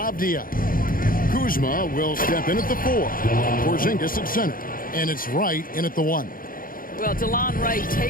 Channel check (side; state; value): right; late; 0.41 ms